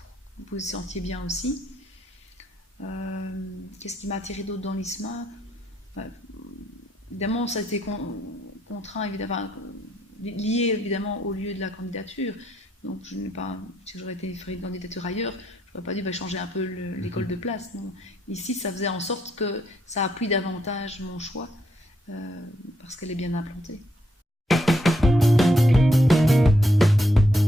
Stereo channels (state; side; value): normal; both; correlation 0.76